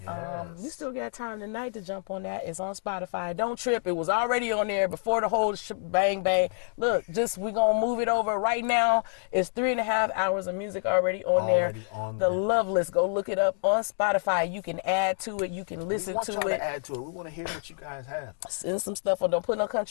You still got time tonight to jump on that. It's on Spotify. Don't trip. It was already on there before the whole bang bang. Look, we're going to move it over right now. It's 3.5 hours of music already on there. The love list. Go look it up on Spotify. You can add to it. You can listen to it. We want y'all to add to it. We want to hear what you guys have. Send some stuff on. Don't put no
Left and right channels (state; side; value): silent; right; digital silence